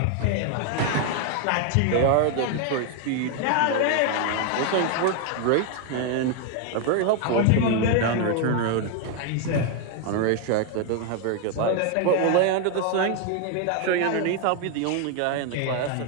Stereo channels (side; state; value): both; different; correlation 0.00